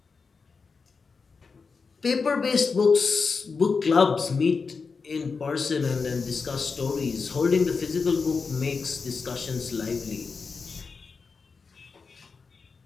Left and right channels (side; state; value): right; quieter; 4.9 dB